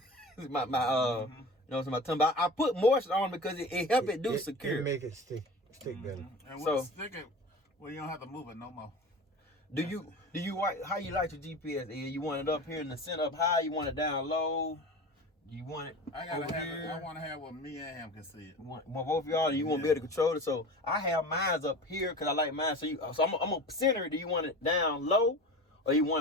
so my tongue. But I put moisture on because it help it do secure. It make it stick better. And when it's sticking, well, you don't have to move it no more. Do you how you like your GPS? You want it up here in the center, up high? You want it down low? You want it? I want to have what me and him can see it. Well, both of y'all, you want to be able to control it. So I have mine up here because I like mine. So I'm gonna center it. Do you want it down low, or you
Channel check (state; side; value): normal; both; correlation 0.34